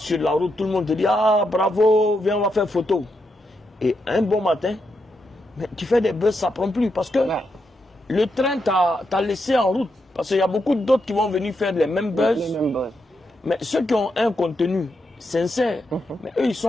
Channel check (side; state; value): both; normal; correlation 0.83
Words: la route, tout le monde te dit « Ah, bravo, viens, on va faire photo. » Et un bon matin, mais tu fais des buzz, ça ne prend plus parce que le train t'a laissé en route. Parce qu'il y a beaucoup d'autres qui vont venir faire les mêmes buzz. Mais ceux qui ont un contenu sincère, mais eux, ils